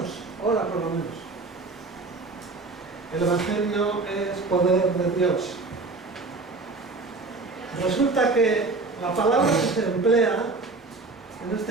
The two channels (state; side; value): quieter; left; 3.6 dB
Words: ora por lo menos. El Evangelio es poder de Dios. Resulta que la palabra que se emplea, en